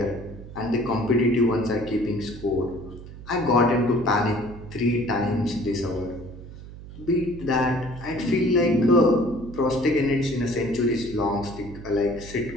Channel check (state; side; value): noise; right; hum, 15 dB below the sound